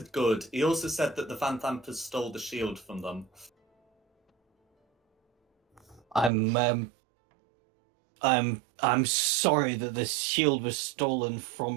good. He also said that the Van Dampers stole the shield from them. I'm sorry that this shield was stolen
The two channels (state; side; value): drops out; left; at 6.3 s